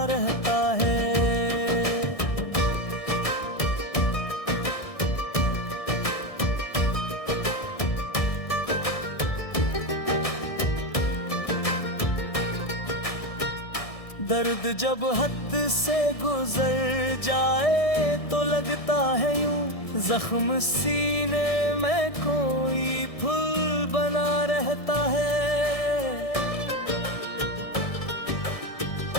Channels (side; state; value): right; late; 1.6 ms